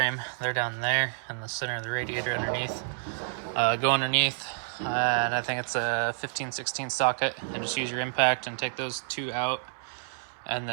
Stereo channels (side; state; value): left; silent; 59 dB below the other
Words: They're down there in the center of the radiator underneath. Go underneath, and I think it's a 15/16 socket, and just use your impact and take those 2 out. And